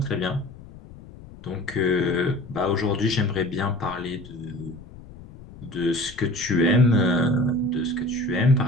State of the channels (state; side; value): noise; left; rumble, 18 dB below the sound